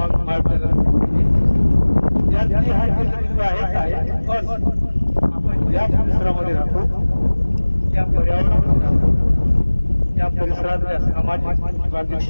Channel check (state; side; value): inverted; both; correlation -1.00